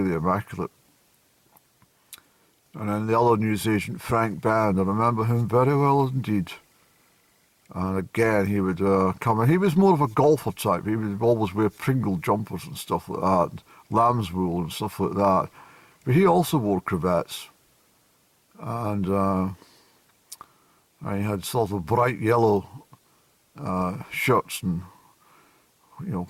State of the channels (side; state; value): both; identical; correlation 1.00